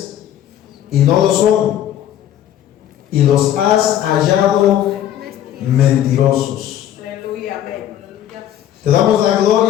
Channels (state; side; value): quieter; right; 11.2 dB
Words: y no lo son, y los has hallado mentirosos. Aleluya. Amén. Te damos la